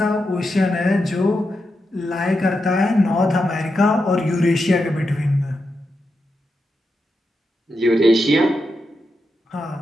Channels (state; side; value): normal; both; correlation 0.87